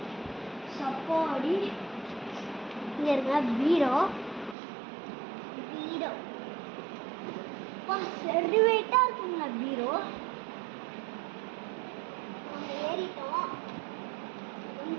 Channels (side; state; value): left; drops out; at 4.5 s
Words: சப்பாடி இங்கே இருக்க பீரோ சரி வெயிட்டாக இருக்குங்க பீரோ. நம்ம ஏறிட்டோம்,